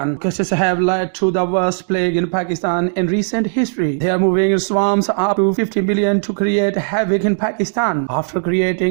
Locusts have led to the worst plague in Pakistan in recent history. They are moving in swarms up to 50 million to create havoc in Pakistan. After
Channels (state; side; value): silent; left; digital silence